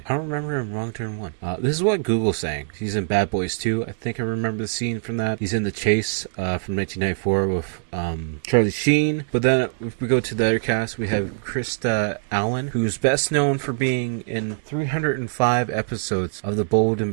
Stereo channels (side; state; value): left; silent; digital silence